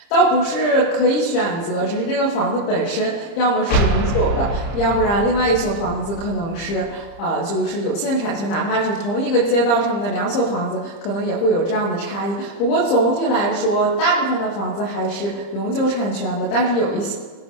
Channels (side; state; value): right; late; 30 ms